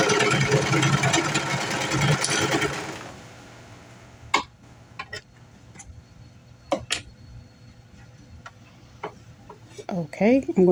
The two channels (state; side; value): identical; both; correlation 1.00